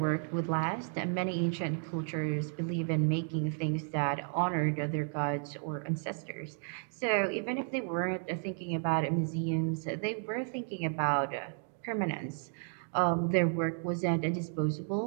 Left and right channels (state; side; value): silent; left; 56 dB below the other